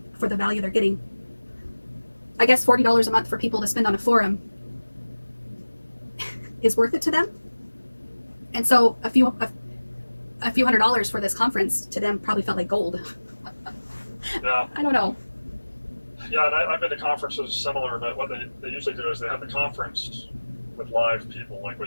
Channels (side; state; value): both; inverted; correlation -1.00